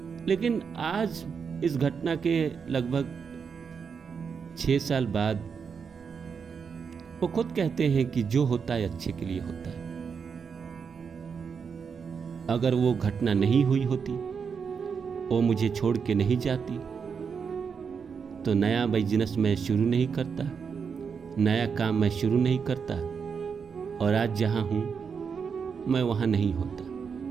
लेकिन आज इस घटना के लगभग 6 साल बाद वो खुद कहते हैं कि जो होता है अच्छे के लिए होता है। अगर वो घटना नहीं हुई होती, वो मुझे छोड़ के नहीं जाती, तो नया बिजनेस मैं शुरू नहीं करता, नया काम मैं शुरू नहीं करता, और आज जहां हूं मैं वहां नहीं होता।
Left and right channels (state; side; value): quieter; left; 6.2 dB